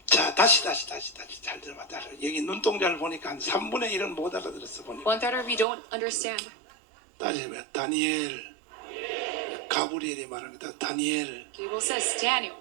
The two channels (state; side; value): drops out; left; at 5.7 s